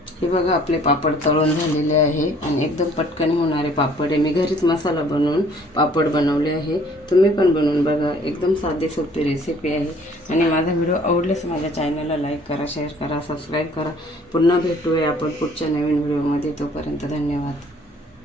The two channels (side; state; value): both; normal; correlation 0.57